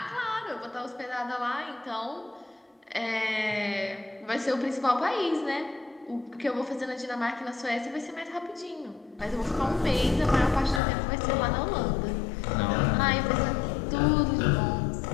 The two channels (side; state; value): right; drops out; at 10.8 s